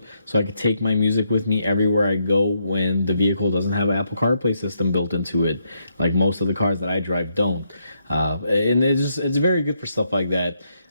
so I can take my music with me everywhere I go when the vehicle doesn't have an Apple CarPlay system built into it, like most of the cars that I drive don't. And it's very good for stuff like that.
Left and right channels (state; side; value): inverted; both; correlation -0.77